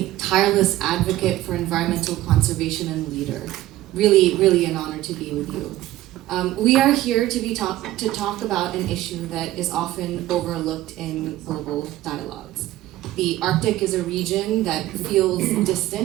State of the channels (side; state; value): left; quieter; 15.3 dB